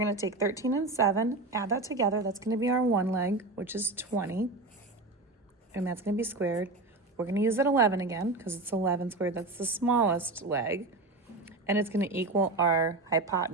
to take 13 and 7, add that together. That's going to be our one leg, which is 20. And that's going to be squared. We're going to use that 11 again because it's 11 squared. That's the smallest leg. And it's going to equal our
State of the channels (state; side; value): quieter; left; 3.2 dB